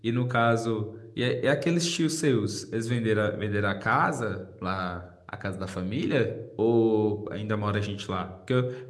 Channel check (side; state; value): both; identical; correlation 1.00